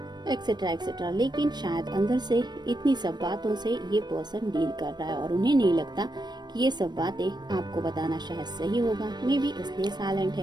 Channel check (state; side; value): late; left; 0.21 ms